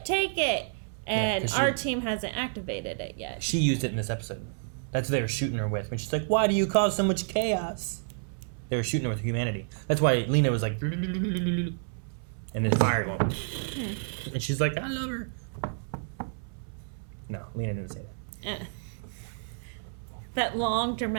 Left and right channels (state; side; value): silent; left; 58 dB below the other